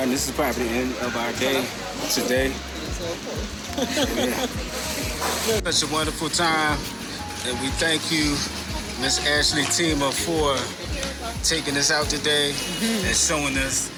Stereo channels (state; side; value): identical; both; correlation 1.00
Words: and this is probably the end of our day today. Yeah. Such a wonderful time, and we thank you, Miss Ashley Tima, for taking us out today and showing us